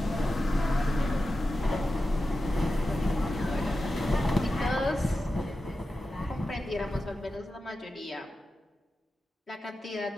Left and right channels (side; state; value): both; normal; correlation 0.92